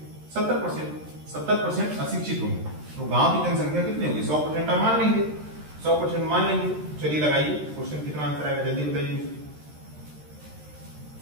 70%। 70% अशिक्षित होंगे तो गांव की जनसंख्या कितनी होगी, 100% आप मान लेंगे, 100% मान लेंगे। चलिए लगाइए क्वेश्चन, कितना आंसर आएगा जल्दी बताइए,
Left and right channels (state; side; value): late; left; 13 ms